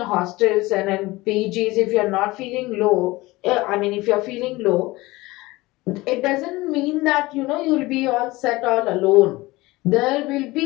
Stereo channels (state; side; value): quieter; right; 20.4 dB